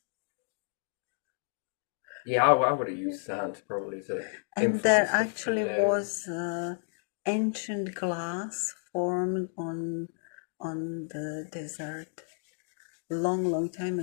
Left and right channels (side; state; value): right; silent; 57 dB below the other